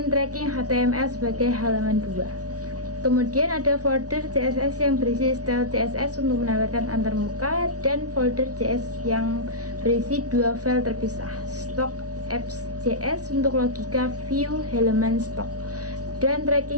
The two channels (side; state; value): left; late; 0.68 ms